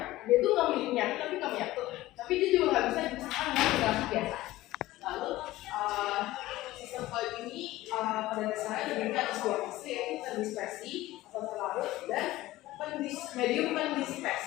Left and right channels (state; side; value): quieter; right; 17.0 dB